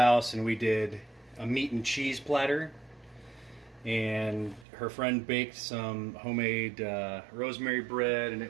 and we did a meat and cheese platter. And her friend baked some homemade rosemary bread, and it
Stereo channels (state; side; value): drops out; left; at 4.7 s